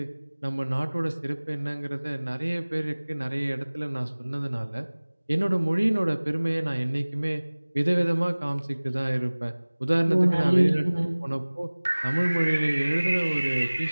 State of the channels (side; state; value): both; inverted; correlation -1.00